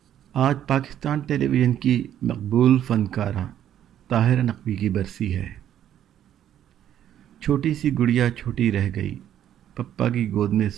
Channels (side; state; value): left; quieter; 10.8 dB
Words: آج پاکستان ٹیلی ویژن کی مقبول فنکارہ طاہرہ نقوی کی برسی ہے۔ چھوٹی سی گڑیا چھوٹی رہ گئی، پپا کی گود میں